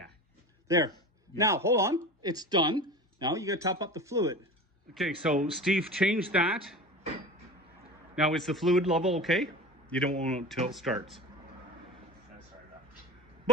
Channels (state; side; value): normal; both; correlation 0.33